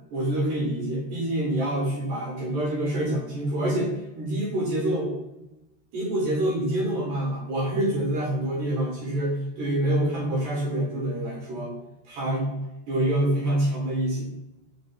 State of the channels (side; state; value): left; late; 14 ms